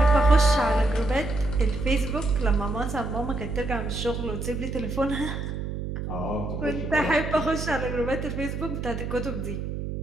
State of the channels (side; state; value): right; noise; hum, 5 dB below the sound